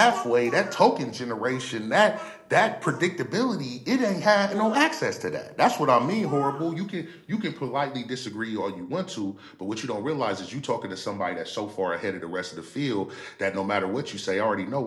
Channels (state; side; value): identical; both; correlation 1.00